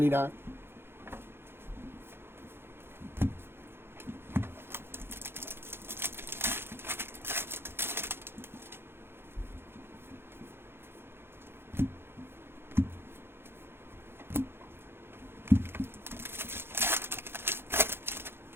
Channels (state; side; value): late; left; 0.11 ms